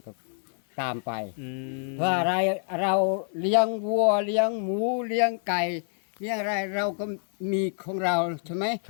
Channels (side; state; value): right; silent; 60 dB below the other